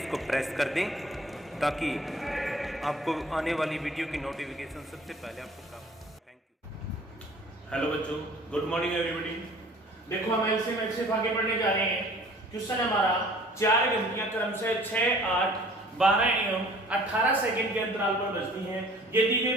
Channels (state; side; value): normal; both; correlation 0.51